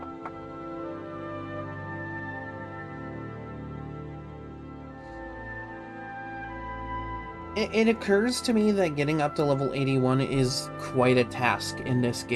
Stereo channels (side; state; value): both; identical; correlation 1.00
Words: It occurs to me that getting up to level 81 is quite a task in this